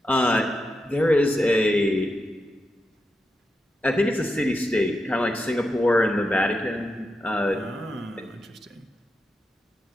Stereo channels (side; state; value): both; normal; correlation 0.87